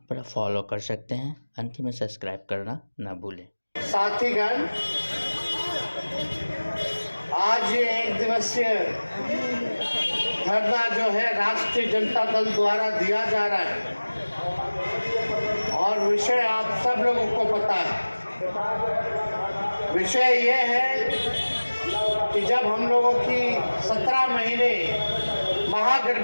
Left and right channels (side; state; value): both; inverted; correlation -1.00